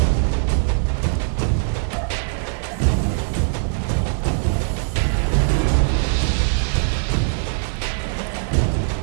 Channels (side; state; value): left; silent; digital silence